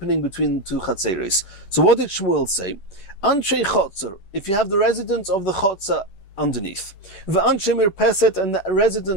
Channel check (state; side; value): late; right; 11 ms